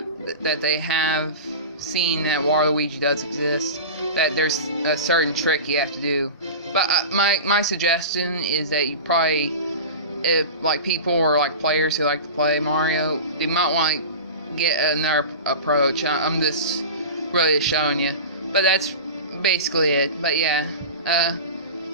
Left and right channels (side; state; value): both; inverted; correlation -0.30